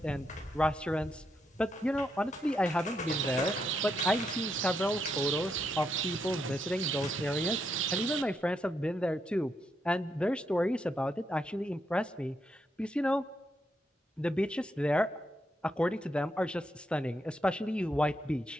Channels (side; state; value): both; normal; correlation 0.80